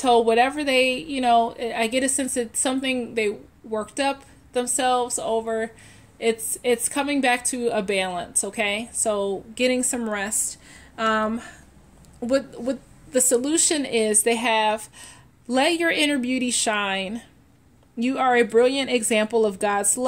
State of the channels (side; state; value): both; identical; correlation 1.00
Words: whatever they, you know, I get a sense that something they worked up themselves over, it's coming back to a balance, okay? So getting some rest. What the solution is, they have, let your inner beauty shine. You are a brilliant example of God's